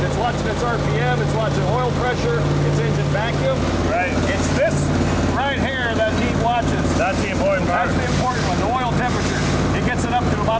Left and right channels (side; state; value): both; identical; correlation 1.00